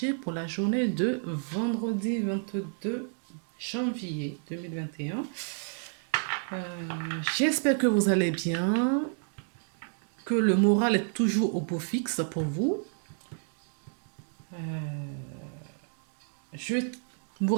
pour la journée de vendredi 22 janvier 2021. J'espère que vous allez bien, que le moral est toujours au beau fixe pour vous. Je vous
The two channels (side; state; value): left; silent; 58 dB below the other